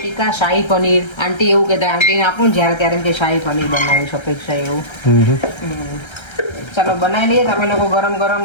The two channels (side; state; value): right; late; 1.3 ms